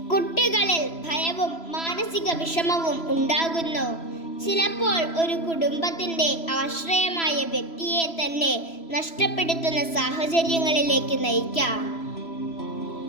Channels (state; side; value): late; right; 3.0 ms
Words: കുട്ടികളിൽ ഭയവും മാനസിക വിഷമവും ഉണ്ടാകുന്നു. ചിലപ്പോൾ ഒരു കുടുംബത്തിന്റെ ആശ്രയമായ വ്യക്തിയെ തന്നെ നഷ്ടപ്പെടുത്തുന്ന സാഹചര്യങ്ങളിലേക്ക് നയിക്കാം.